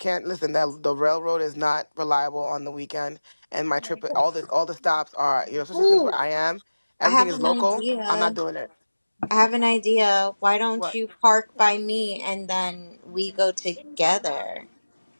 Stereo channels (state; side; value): inverted; both; correlation -1.00